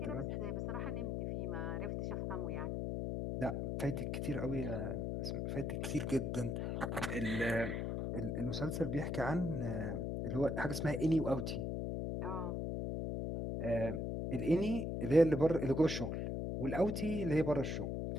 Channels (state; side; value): noise; left; hum, 1 dB below the sound